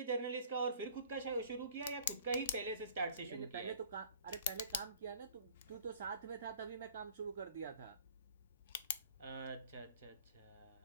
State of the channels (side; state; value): both; inverted; correlation -0.50